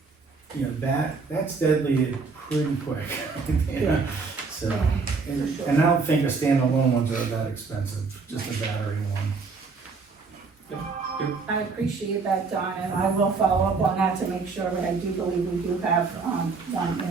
you know, that's deadly pretty quick. Yeah. So, and I don't think the standalone ones are that expensive, just a battery one. I appreciate that, Don, and I will follow up on that to make sure, but I do believe we do have, one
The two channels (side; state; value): left; quieter; 4.6 dB